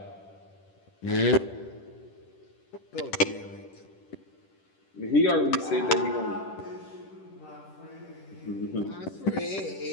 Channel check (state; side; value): late; right; 10 ms